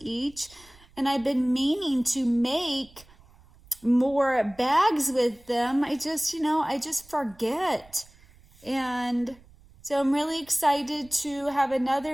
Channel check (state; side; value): noise; right; rumble, 26 dB below the sound